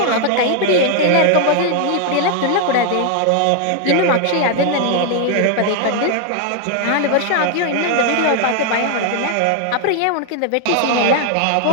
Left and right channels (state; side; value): different; both; correlation 0.00